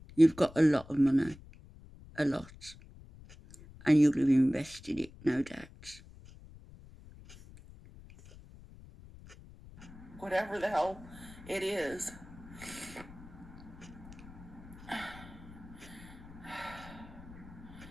You've got a lot of money, a lot, and you'll have invested it, no doubt. Whatever the hell it is.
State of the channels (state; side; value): noise; left; rumble, 18 dB below the sound